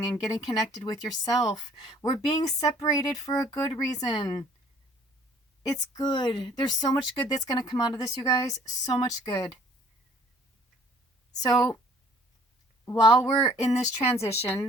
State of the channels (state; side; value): normal; both; correlation 0.56